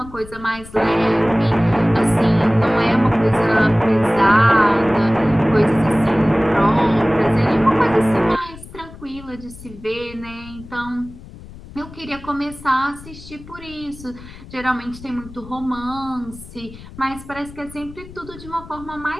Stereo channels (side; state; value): left; noise; rumble, 17 dB below the sound